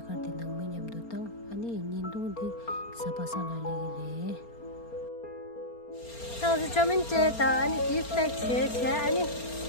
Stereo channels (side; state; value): right; late; 4.3 ms